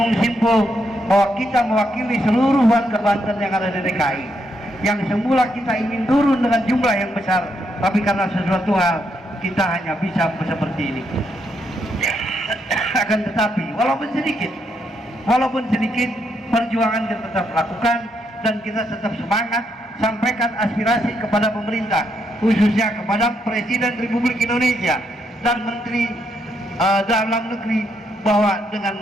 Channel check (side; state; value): both; normal; correlation 0.77